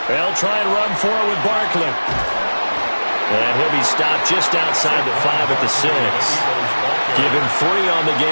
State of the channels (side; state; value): both; inverted; correlation -1.00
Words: They'll try and run for it with Barkley. And he'll be stopped just outside the 5 at the 6. Give him 3 on the